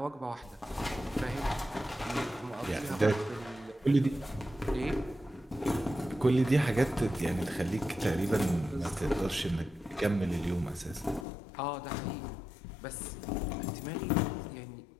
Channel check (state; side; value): drops out; right; at 11.2 s